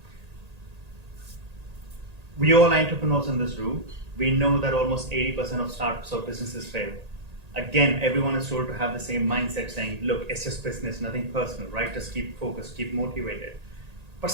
We all entrepreneurs in this room, we know that almost 80% of startups or businesses fail. Again, everyone is told to have the same mindset saying, look, it's just business, nothing personal, right? Just keep focused, keep motivated. But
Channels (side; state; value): left; late; 1.8 ms